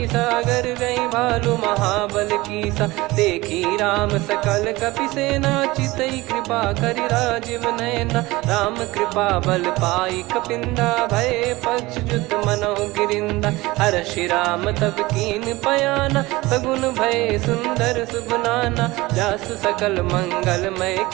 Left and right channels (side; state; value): left; quieter; 20.5 dB